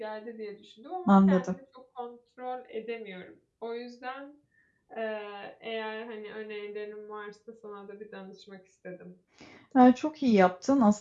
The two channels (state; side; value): identical; both; correlation 1.00